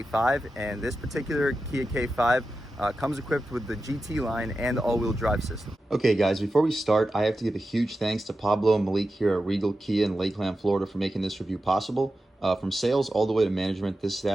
And this particular Kia K5 comes equipped with the GT line and the all-wheel drive system. Okay guys, before we start, I have to give a huge thanks to Pablo and Malik here at Regal Kia in Lakeland, Florida for making this review possible. From sales all the way to management, this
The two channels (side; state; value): both; normal; correlation 0.91